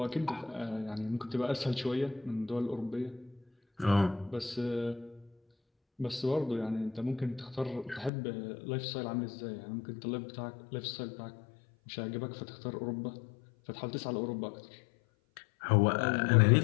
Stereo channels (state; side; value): drops out; right; at 8.1 s